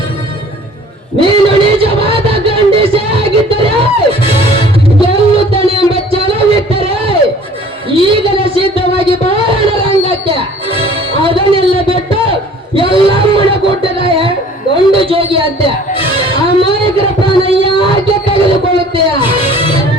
ನೀನು ನಿಜವಾದ ಗಂಡಸೇ ಆಗಿದ್ದರೆ, ಗೆಲ್ಲುತ್ತಾನೆ ಎಂಬ ಛಲವಿದ್ದರೆ ಈಗಲೇ ಸಿದ್ಧವಾಗಿ ಬಾರಣ ರಂಗಕ್ಕೆ. ಅದನ್ನೆಲ್ಲ ಬಿಟ್ಟು ಎಲ್ಲಮ್ಮನ ಗುಡ್ಡದ ಗಂಡು ಜೋಗಿ ಅಂತೆ ಅಮಾಯಕರ ಪ್ರಾಣ ಯಾಕೆ ತೆಗೆದುಕೊಳ್ಳುತ್ತೀಯ?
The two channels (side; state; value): both; normal; correlation 0.51